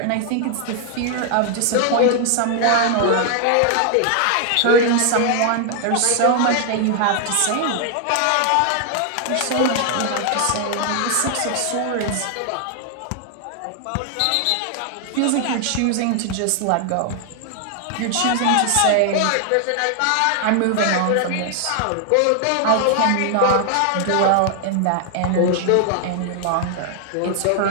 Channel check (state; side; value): different; both; correlation 0.00